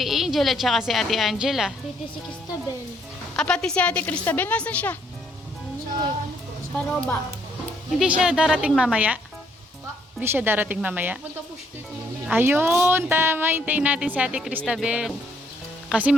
Angel at saka si Ate Angela. Pretty si Cristabel. Ah, pati si Ate Cristabel. Nasaan siya? Sa Paroba. Hindi siya darating mamaya? Hindi siya darating mamaya? Ayun, tama. Hintayin natin si Ate Cristabel. Kasi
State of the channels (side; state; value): both; normal; correlation 0.69